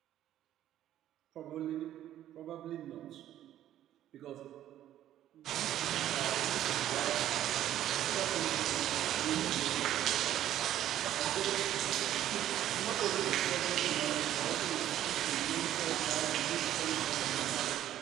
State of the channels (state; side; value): quieter; left; 12.2 dB